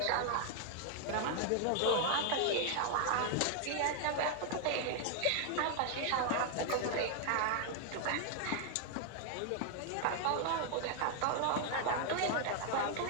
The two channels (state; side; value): different; both; correlation 0.00